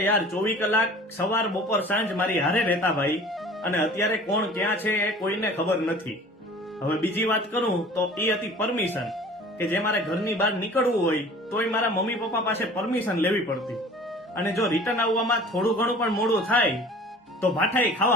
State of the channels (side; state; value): both; normal; correlation 0.45